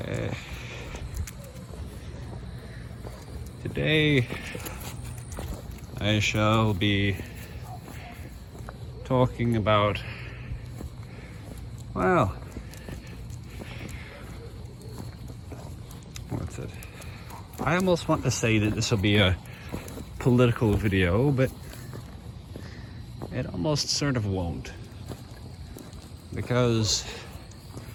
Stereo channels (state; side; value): identical; both; correlation 1.00